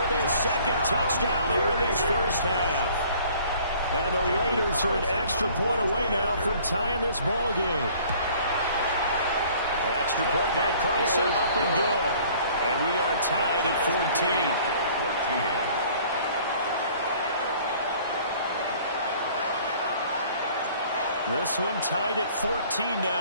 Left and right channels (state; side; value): inverted; both; correlation -0.54